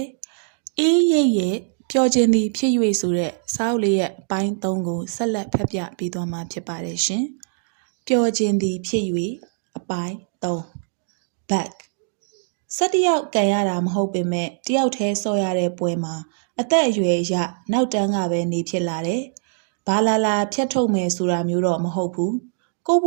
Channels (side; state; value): left; silent; digital silence